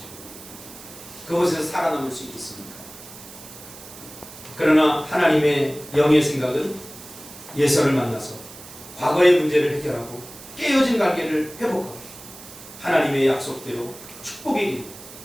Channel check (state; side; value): noise; right; hiss, 17 dB below the sound